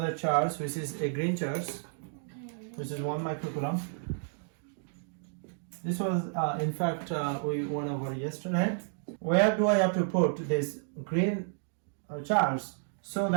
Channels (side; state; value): left; silent; digital silence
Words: charge, which is a green charge, which is 1 microcoulomb. This was, in fact, we went over yesterday. Where do I have to put this green charge so